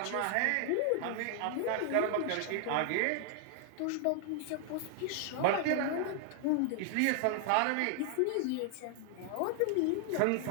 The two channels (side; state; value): both; different; correlation 0.00